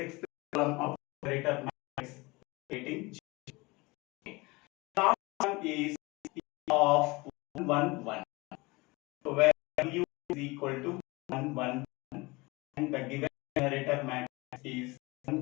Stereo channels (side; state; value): right; quieter; 23.9 dB